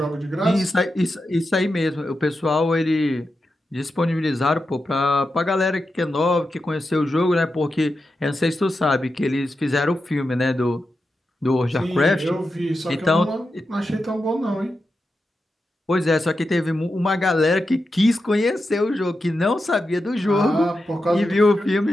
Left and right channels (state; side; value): normal; both; correlation 0.89